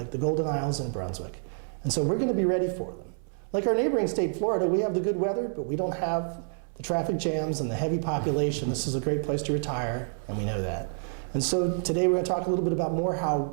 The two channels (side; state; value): left; silent; 59 dB below the other